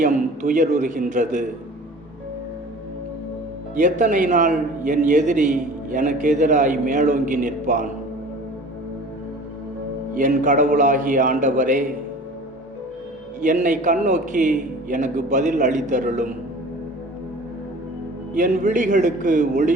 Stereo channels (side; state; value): both; normal; correlation 0.43